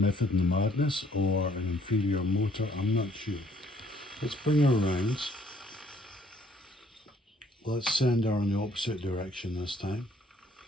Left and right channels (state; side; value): normal; both; correlation 0.63